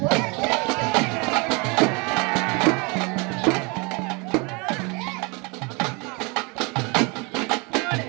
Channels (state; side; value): quieter; left; 29.7 dB